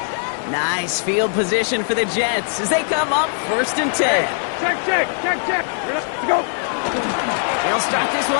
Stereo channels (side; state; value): right; silent; 64 dB below the other